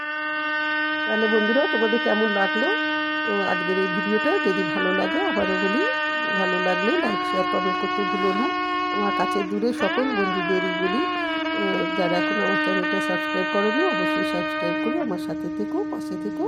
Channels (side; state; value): both; identical; correlation 1.00